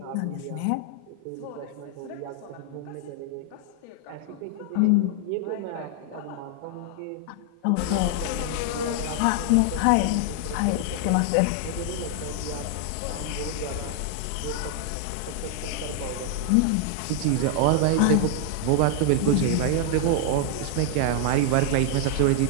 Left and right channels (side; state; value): both; different; correlation 0.00